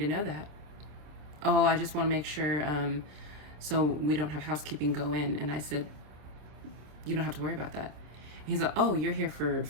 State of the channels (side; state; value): left; late; 27 ms